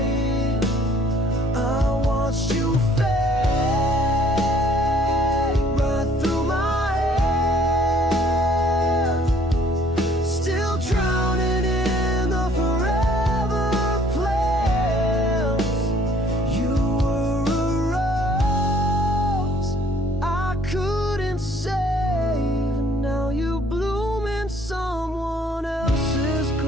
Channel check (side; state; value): both; normal; correlation 0.59